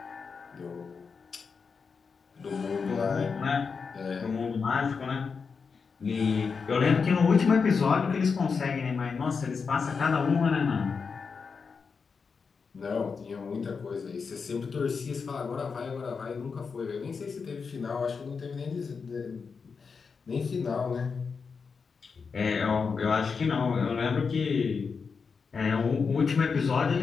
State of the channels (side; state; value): right; quieter; 5.4 dB